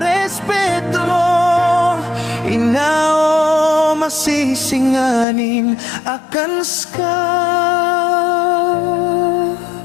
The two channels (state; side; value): drops out; right; at 5.2 s